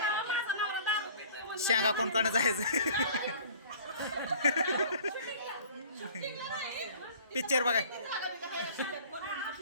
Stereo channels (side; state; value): both; inverted; correlation -0.48